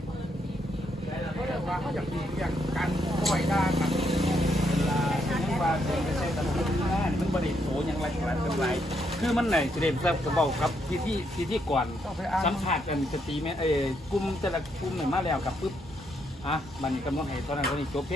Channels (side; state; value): both; normal; correlation 0.76